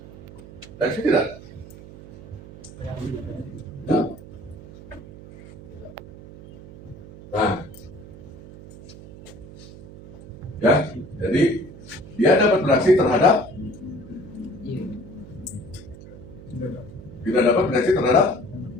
Bereaksi tidak? Nah, ya, jadi dia dapat bereaksi terhadap tidak dapat bereaksi terhadap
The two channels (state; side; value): noise; right; hum, 17 dB below the sound